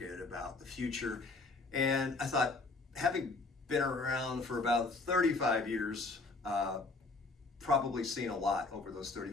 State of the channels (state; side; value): quieter; right; 3.5 dB